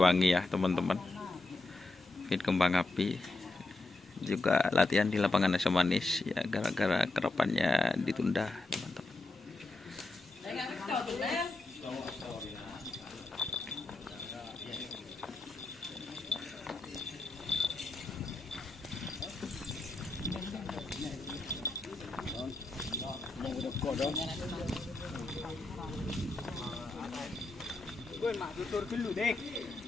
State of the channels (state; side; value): quieter; right; 3.0 dB